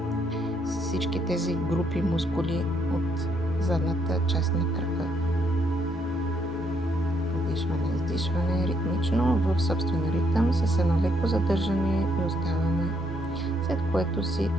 всички тези групи мускули от задната част на крака. Вдишване, издишване ритмично в собствен ритъм с едно леко задържане и оставаме, след което си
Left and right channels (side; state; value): both; normal; correlation 0.72